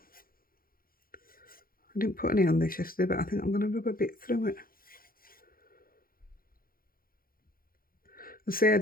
I didn't put any on this yesterday, but I think I'm going to rub a bit through it. I say I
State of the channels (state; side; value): late; right; 0.42 ms